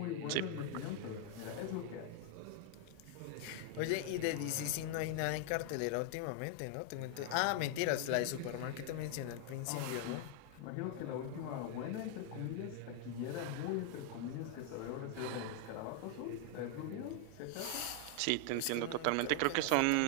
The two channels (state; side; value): different; both; correlation 0.00